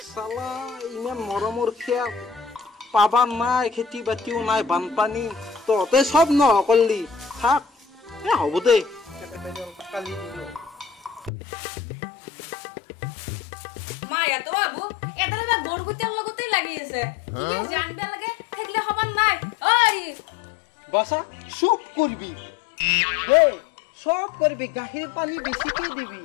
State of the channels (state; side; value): drops out; right; at 11.3 s